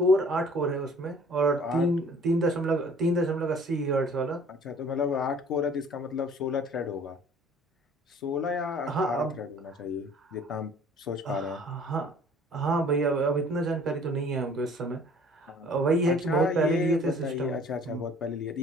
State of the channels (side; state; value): both; normal; correlation 0.52